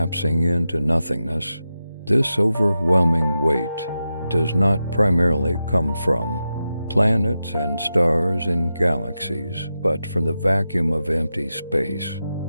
into nothingness. This overwhelming weight does not primarily come from planets and stars in galaxies, but from the vacuum of empty space.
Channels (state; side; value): inverted; both; correlation -0.90